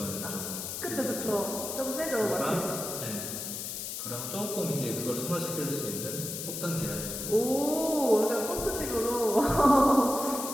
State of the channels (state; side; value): noise; left; hiss, 6 dB below the sound